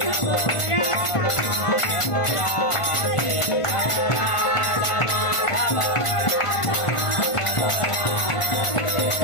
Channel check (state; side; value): late; right; 1.5 ms